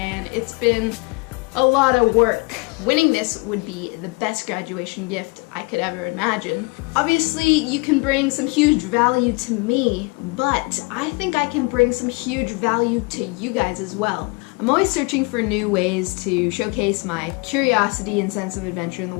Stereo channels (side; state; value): right; quieter; 29.2 dB